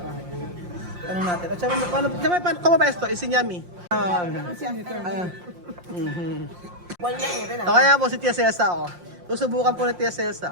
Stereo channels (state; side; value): late; left; 5.7 ms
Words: akin. Tanong natin. At saka, paano como ba ito? Isinyami. So kaya po si Tia Celsa, oh. Susubukan po ni Tia